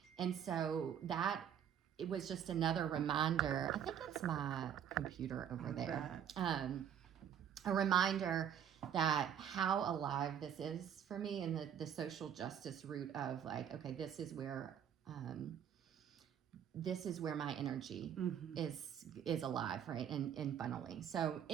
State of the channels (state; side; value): quieter; left; 9.0 dB